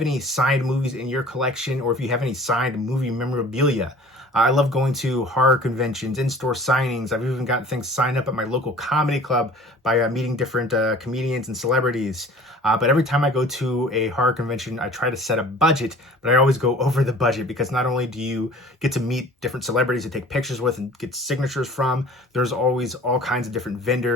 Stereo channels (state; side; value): normal; both; correlation 0.46